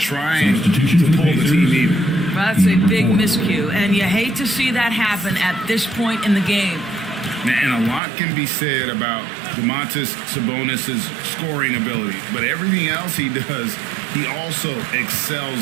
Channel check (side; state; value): left; drops out; at 8.0 s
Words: to pull the team even. Well, that's a big miscue, and you hate to see that happen at this point in the game. And a lot can be said about Domantas Sabonis' scoring ability, but everything else he does, he also